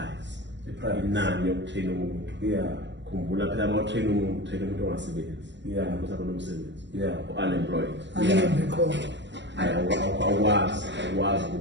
Inani yokutrain umuntu. Yeah. Khumbula phela uma utrain umuntu, train umuntu ongasebenzi. Yeah. Kusaba nomsebenzi. Yeah. Unemployed. Awukwazi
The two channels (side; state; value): left; late; 0.53 ms